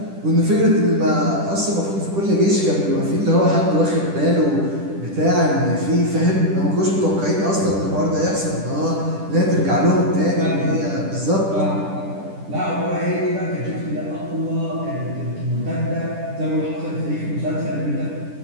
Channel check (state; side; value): late; left; 10 ms